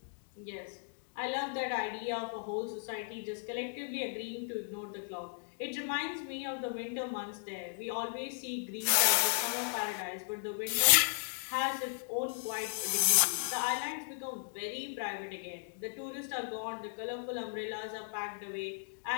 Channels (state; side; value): silent; right; digital silence